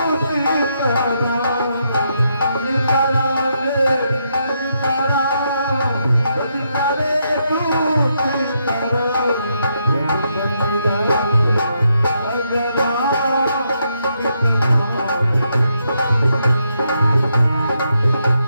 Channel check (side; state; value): both; inverted; correlation -0.79